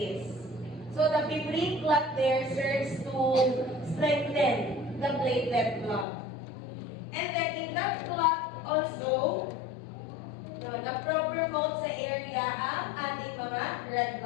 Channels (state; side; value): drops out; right; at 6.1 s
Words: So, the fibrin clot there serves to strengthen the platelet plug. And then, in that clot also, na-promote sa area ang ating mga red